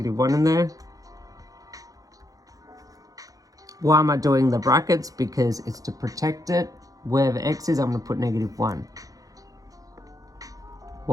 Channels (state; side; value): late; left; 0.17 ms